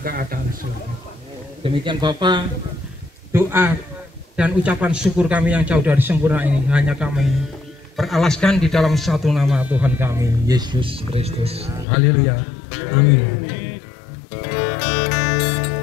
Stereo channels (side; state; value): right; drops out; at 11.9 s